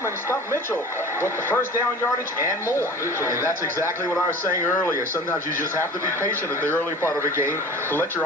and Stump Mitchell with the first down yardage and more. And that's exactly what I was saying earlier. Sometimes you just have to be patient at the early part of a game to let your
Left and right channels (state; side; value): normal; both; correlation 0.39